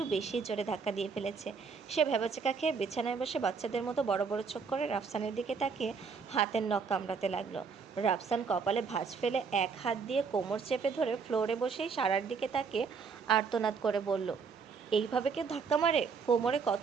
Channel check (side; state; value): left; quieter; 5.5 dB